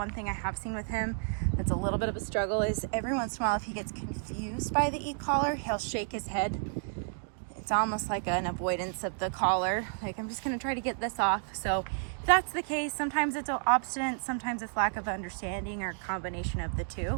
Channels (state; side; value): silent; left; 57 dB below the other